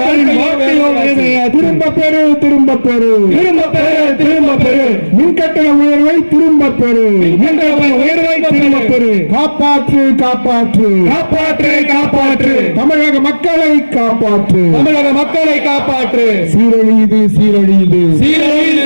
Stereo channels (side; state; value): both; inverted; correlation -1.00